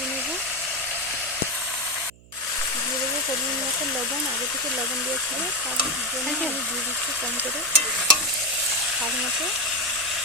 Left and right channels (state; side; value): noise; right; hum, 24 dB below the sound